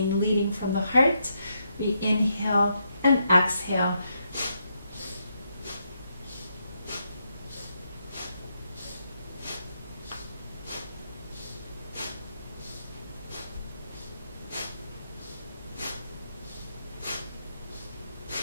leading from the heart. We inhale and exhale.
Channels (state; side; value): inverted; both; correlation -0.79